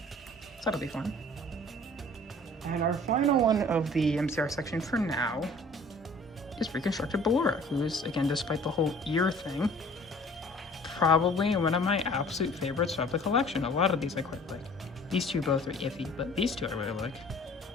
So that'll be fun. And our final one of the MCR section for now is Reconstructed Ballora, who's, again, despite the whole ear thing, probably one of my absolute favorites of the collection. A lot of these I quite like. These two both are iffy, but these two I really like.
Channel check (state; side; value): normal; both; correlation 0.50